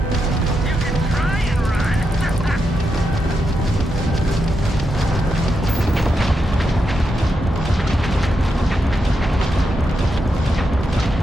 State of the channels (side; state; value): both; normal; correlation 0.85